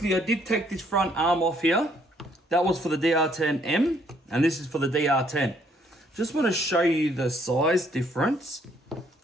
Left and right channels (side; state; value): both; normal; correlation 0.66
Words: I did take this front arm off here. That was for the DR10M, and this is for the DR10. Just want to show you the size difference.